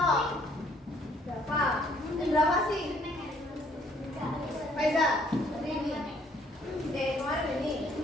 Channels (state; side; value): normal; both; correlation 0.63